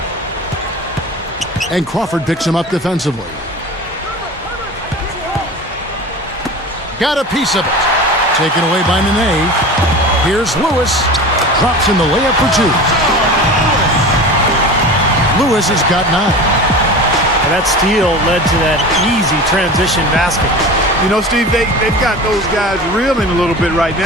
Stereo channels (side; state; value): both; normal; correlation 0.34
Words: And Crawford picks him up defensively. Got a piece of it. Taken away by Nene. Here's Lewis. Drops in the layup for 2. Lewis has got 9. And that steal led to that easy transition basket. You know, Steve, they've got those guys reeling a little bit right